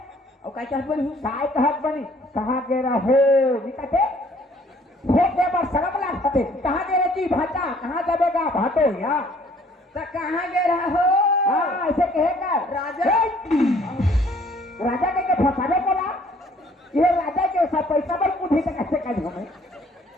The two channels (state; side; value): normal; both; correlation 0.59